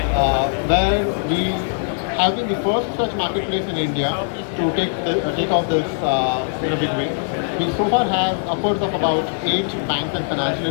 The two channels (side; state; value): right; silent; 65 dB below the other